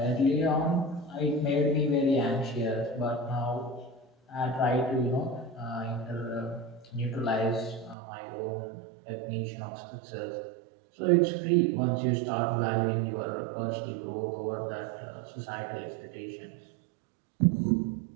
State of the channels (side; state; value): left; drops out; at 8.0 s